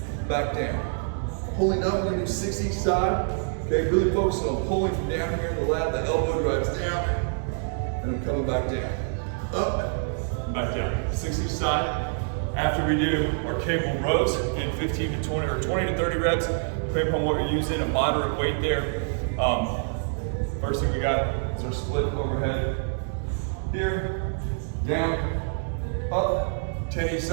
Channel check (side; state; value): left; silent; digital silence